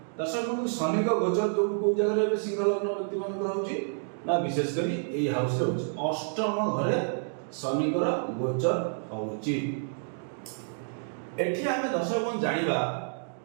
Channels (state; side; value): silent; left; digital silence